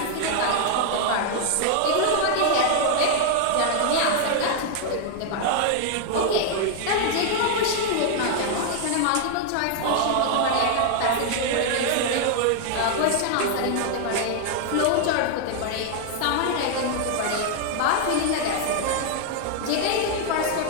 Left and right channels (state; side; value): different; both; correlation 0.00